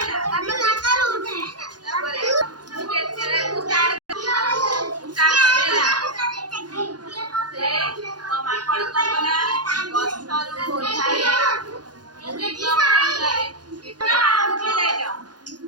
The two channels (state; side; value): late; left; 0.69 ms